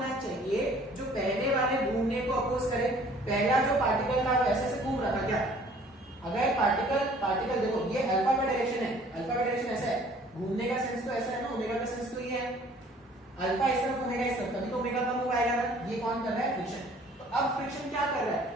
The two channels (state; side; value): normal; both; correlation 0.54